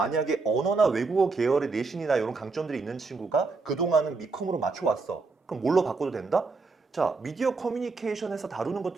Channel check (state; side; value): quieter; left; 4.1 dB